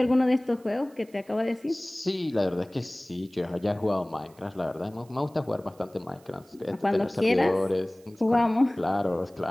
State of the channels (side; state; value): right; noise; hiss, 29 dB below the sound